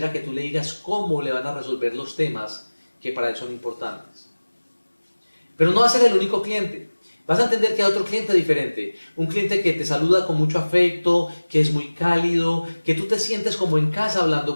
que tú le digas cómo le van a resolver los temas que para él son importantes. Pero no va a ser el único cliente. Vas a entender que hay otro cliente diferente, un cliente que te saluda con mucho afecto, que es muy cálido, que tú te sientes como en casa hablando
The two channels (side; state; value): both; inverted; correlation -1.00